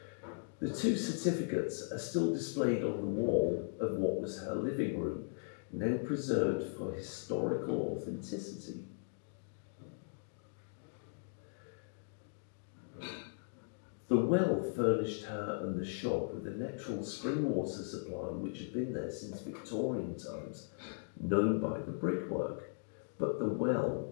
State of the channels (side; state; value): right; silent; digital silence